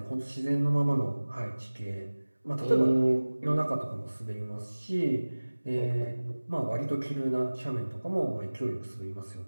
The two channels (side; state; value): both; inverted; correlation -1.00